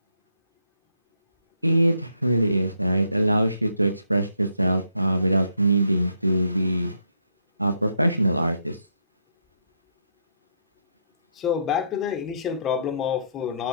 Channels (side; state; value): both; inverted; correlation -0.74